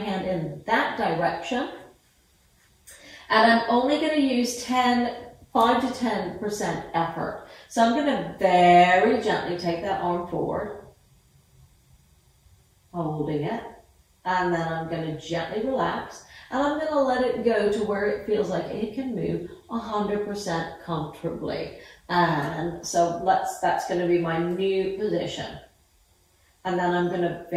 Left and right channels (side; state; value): both; identical; correlation 1.00